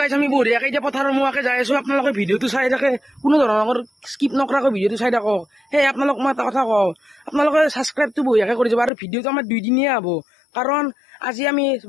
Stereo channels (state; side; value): drops out; right; at 8.9 s